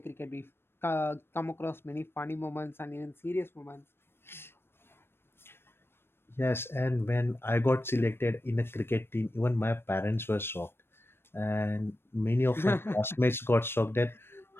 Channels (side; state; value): right; late; 0.11 ms